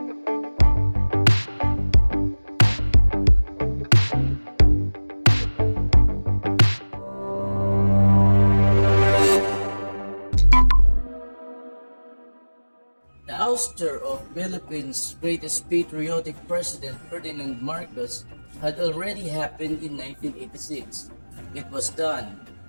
The ouster of Philippines' greatest patriotic president Ferdinand Marcos had already happened in 1986. It was done.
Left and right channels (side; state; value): both; inverted; correlation -1.00